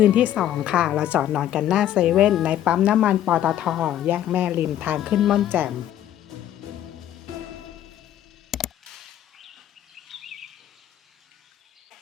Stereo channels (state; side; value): quieter; right; 11.5 dB